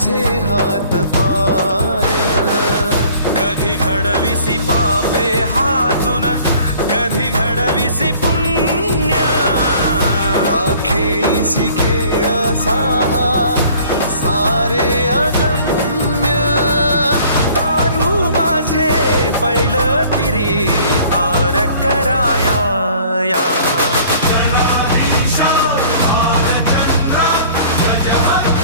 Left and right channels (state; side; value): inverted; both; correlation -0.52